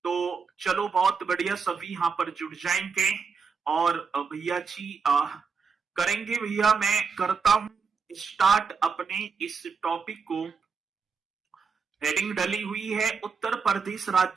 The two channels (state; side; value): quieter; left; 5.5 dB